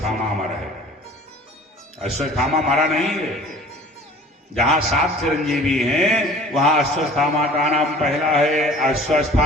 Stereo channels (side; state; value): both; normal; correlation 0.47